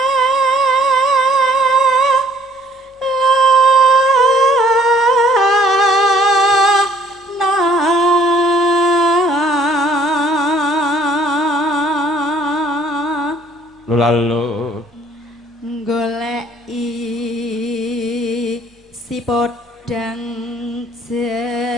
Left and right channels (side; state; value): both; normal; correlation 0.59